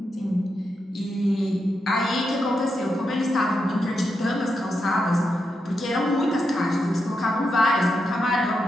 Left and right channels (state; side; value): normal; both; correlation 0.85